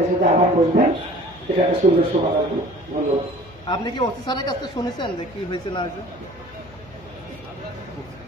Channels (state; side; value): noise; left; hum, 22 dB below the sound